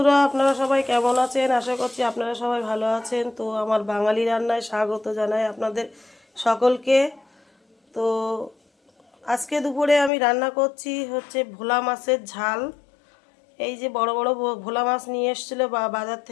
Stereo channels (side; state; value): right; drops out; at 10.1 s